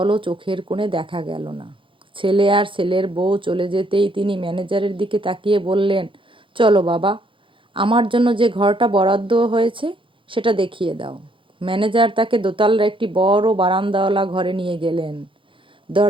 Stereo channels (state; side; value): late; left; 0.25 ms